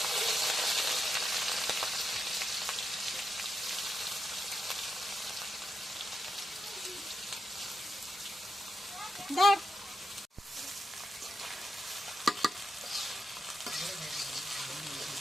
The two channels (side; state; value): both; normal; correlation 0.86